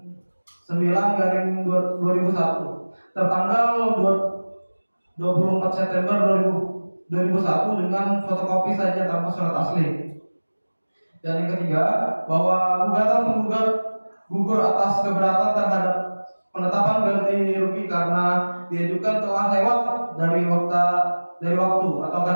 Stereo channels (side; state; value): both; inverted; correlation -1.00